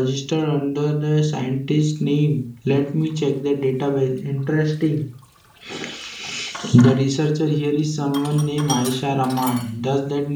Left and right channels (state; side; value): identical; both; correlation 1.00